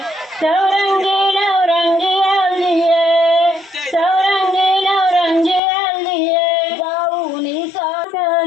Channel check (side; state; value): right; drops out; at 5.6 s